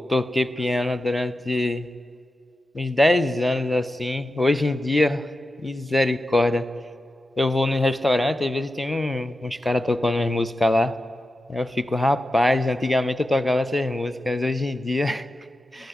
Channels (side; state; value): both; normal; correlation 0.91